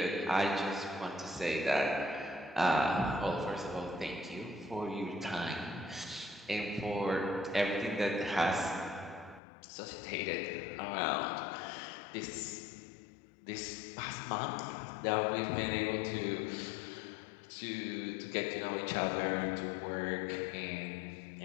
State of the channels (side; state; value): right; drops out; at 9.4 s